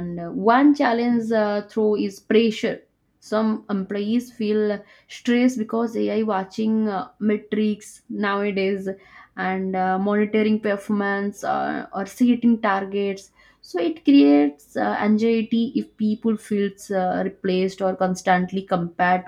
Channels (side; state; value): both; identical; correlation 1.00